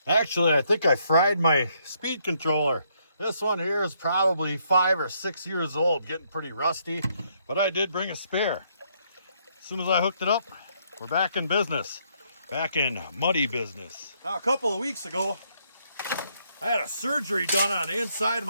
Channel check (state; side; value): inverted; both; correlation -0.72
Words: Actually, I think I fried my speed controller. This one here is probably 5 or 6 years old, getting pretty rusty, but I did bring a spare. As soon as I hooked it up, we're back in business. Back in muddy business. Now, a couple of weeks ago, I had a surgery done on the inside of